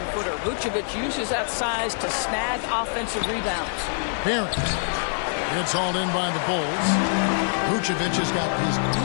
Vucevic uses that size to snag offensive rebounds. Barrett. It's hauled in by the Bulls. Vucevic has got his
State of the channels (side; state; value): right; silent; digital silence